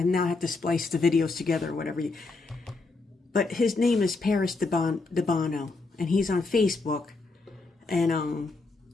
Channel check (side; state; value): right; quieter; 3.7 dB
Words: now have to splice the videos together or whatever. But his name is Paris Debano, and he's on Facebook. And